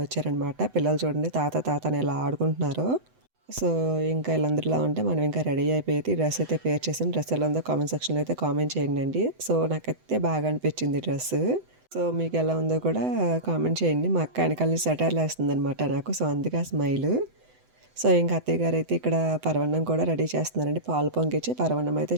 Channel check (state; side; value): late; left; 7.9 ms